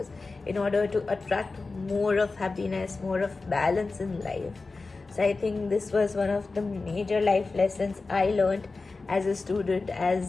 in order to attract more of happiness, more of balance in life. So I think this was one of the major life lessons I learned as a student,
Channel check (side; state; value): right; quieter; 3.8 dB